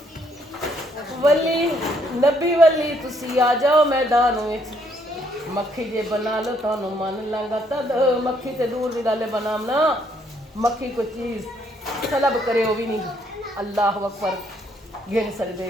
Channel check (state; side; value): normal; both; correlation 0.69